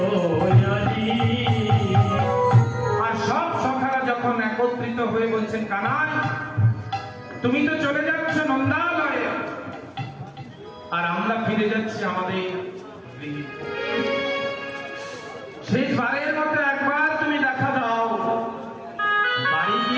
আর সব সখারা যখন একত্রিত হয়ে বলছেন কানাই তুমি তো চলে যাচ্ছ নন্দালয়ে আর আমরা ফিরে যাচ্ছি আমাদের গৃহে। শেষবারের মতো একবার তুমি দেখা দাও, বাড়ি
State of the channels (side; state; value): both; identical; correlation 1.00